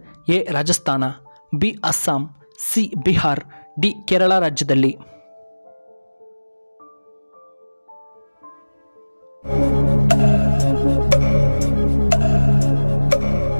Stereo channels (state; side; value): inverted; both; correlation -1.00